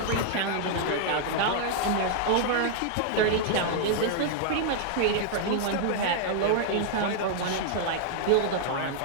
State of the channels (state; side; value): different; both; correlation -0.01